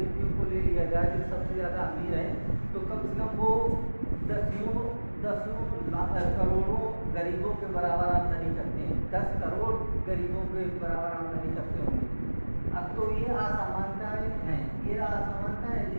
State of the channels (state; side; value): inverted; both; correlation -1.00